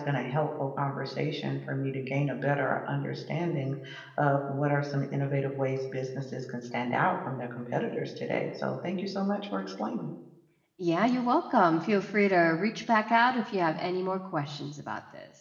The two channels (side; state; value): both; identical; correlation 1.00